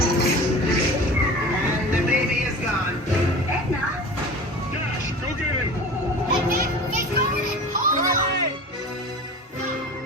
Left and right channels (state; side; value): normal; both; correlation 0.36